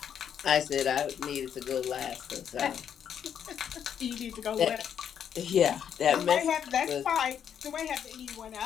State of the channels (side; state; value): right; quieter; 8.6 dB